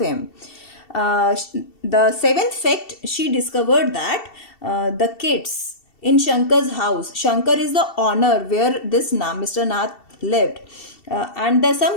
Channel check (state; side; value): late; right; 2.7 ms